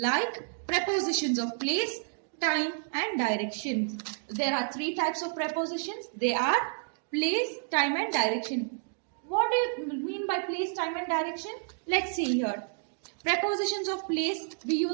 prepositions of place, time and direction. There are three types of prepositions. They are place, time and direction. What do you mean by place, time and direction? Let's see here. Prepositions of place we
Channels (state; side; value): silent; left; 58 dB below the other